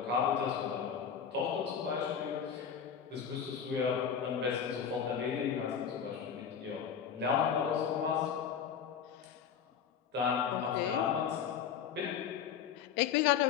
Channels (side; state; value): right; quieter; 7.8 dB